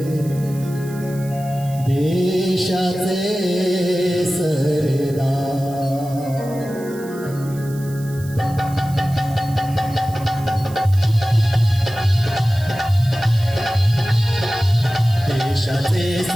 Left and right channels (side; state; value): right; noise; hiss, 20 dB below the sound